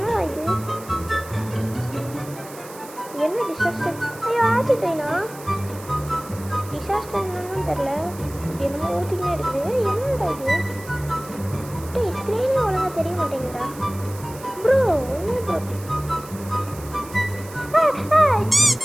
இது என்ன டிசாஸ்டர். ஐயோ ஆசிட் ஐனா டிசாஸ்டர் என்னன்னு தெரில. என்னமோ ஊற்றிக்கினே இருக்குது. என்னடா இது டேய் ஸ்க்ரீனே ஒழுங்காக தெரிய மாட்டேங்குதா ப்ரோ. என்ன ப்ரோ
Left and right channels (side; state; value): right; noise; hiss, 18 dB below the sound